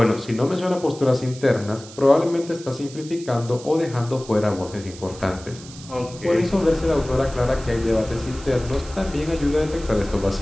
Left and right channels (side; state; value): right; noise; hiss, 17 dB below the sound